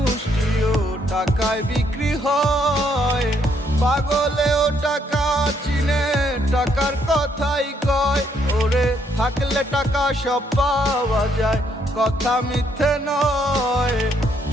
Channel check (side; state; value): both; normal; correlation 0.71